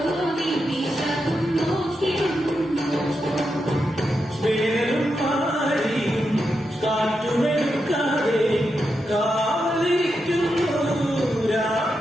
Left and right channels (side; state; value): both; normal; correlation 0.86